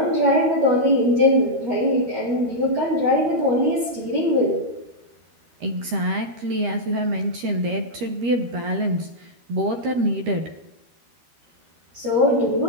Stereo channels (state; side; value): late; left; 13 ms